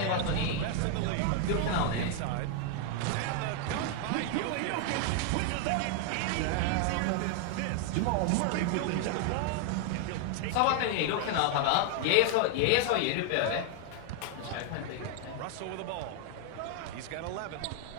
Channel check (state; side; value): different; both; correlation 0.00